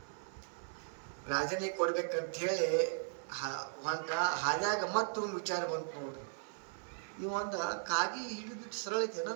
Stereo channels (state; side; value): silent; left; digital silence